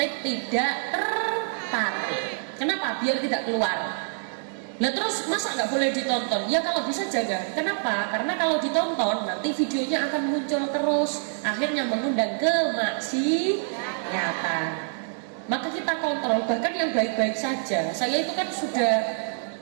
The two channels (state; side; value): silent; left; 61 dB below the other